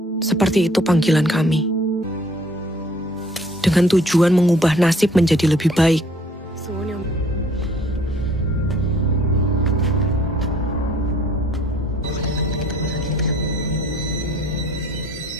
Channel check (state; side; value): normal; both; correlation 0.57